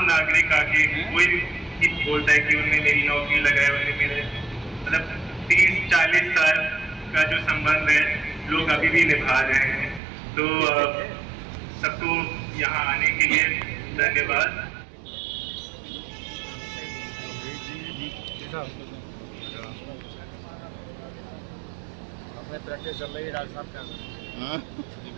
नागरिक आके कोई भी बोलता है कि उन्होंने मेरी नौकरी लगाई, उन्होंने मेरे मतलब 30-40 साल का जो संबंध है लोग अभी भी निभा रहे हैं। तो सबको यहाँ आने के लिए धन्यवाद। अपने प्रैक्टिस चल रही है डॉक्टर साहब क्या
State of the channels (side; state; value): left; drops out; at 10.0 s